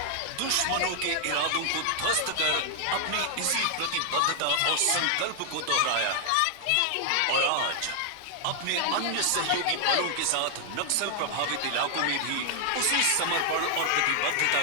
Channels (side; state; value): both; different; correlation 0.00